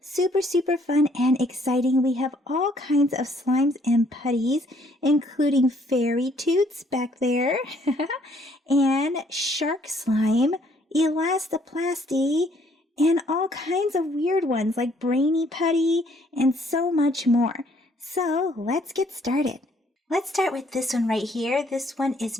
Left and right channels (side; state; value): both; normal; correlation 0.65